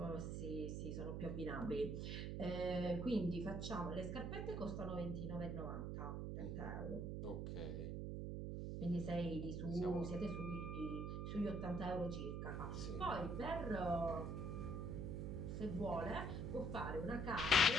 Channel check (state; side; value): noise; right; hum, 2 dB below the sound